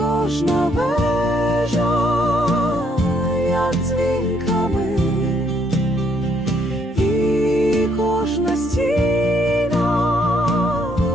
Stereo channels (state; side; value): normal; both; correlation 0.70